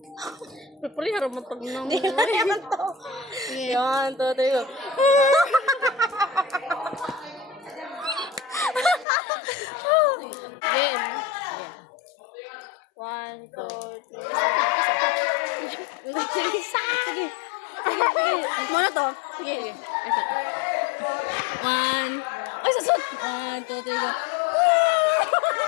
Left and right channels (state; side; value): drops out; right; at 9.1 s